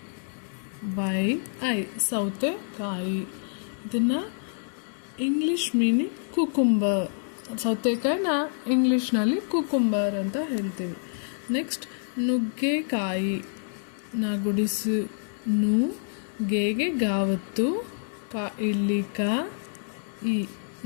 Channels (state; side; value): silent; right; digital silence